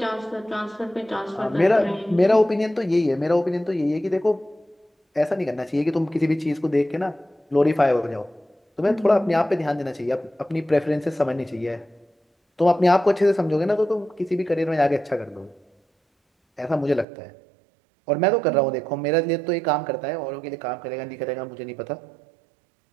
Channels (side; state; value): left; drops out; at 17.1 s